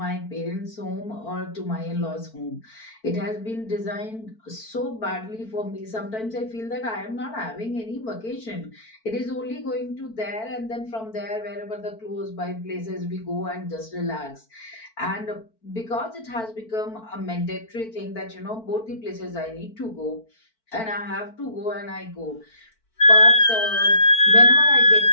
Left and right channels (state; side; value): late; right; 4.5 ms